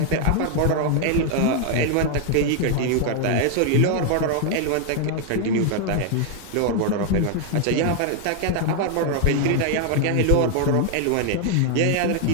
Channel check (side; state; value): both; different; correlation 0.00